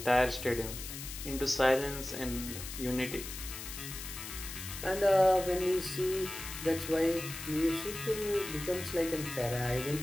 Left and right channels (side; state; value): left; noise; hiss, 9 dB below the sound